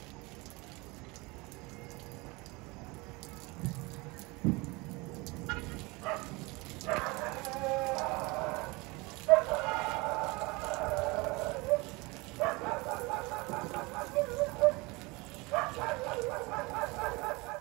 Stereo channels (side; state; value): left; quieter; 25.0 dB